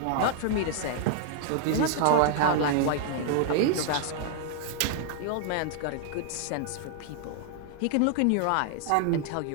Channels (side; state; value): both; different; correlation -0.01